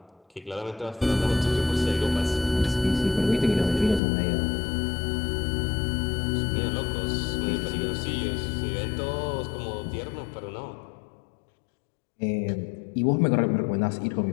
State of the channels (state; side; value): drops out; right; at 4.0 s